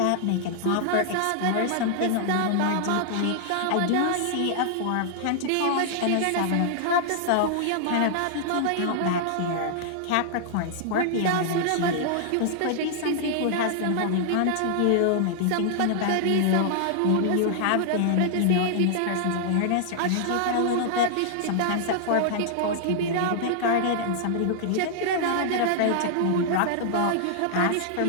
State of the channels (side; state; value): both; different; correlation -0.01